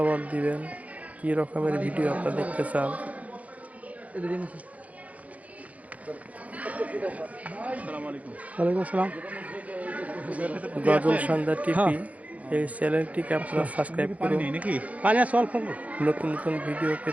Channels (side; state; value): left; late; 0.069 ms